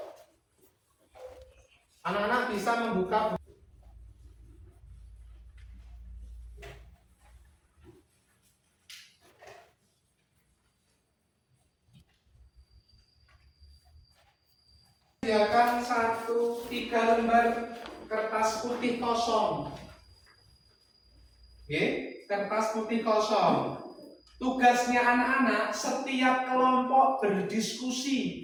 Anak-anak bisa membuka sediakan 3 lembar kertas putih kosong. Oke, kertas putih kosong. Tugasnya anak-anak setiap kelompok berdiskusi,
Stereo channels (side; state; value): both; identical; correlation 1.00